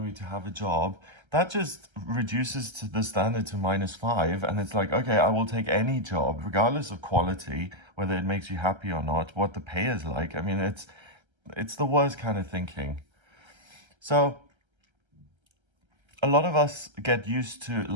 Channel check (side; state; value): left; late; 1.3 ms